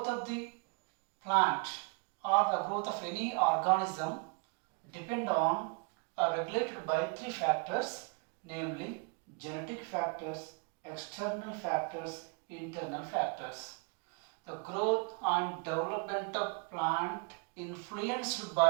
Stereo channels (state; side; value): quieter; left; 32.8 dB